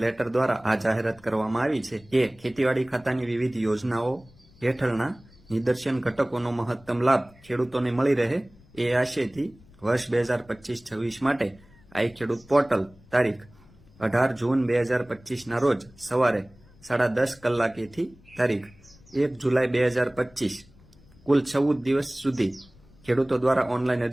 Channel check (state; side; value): noise; left; rumble, 26 dB below the sound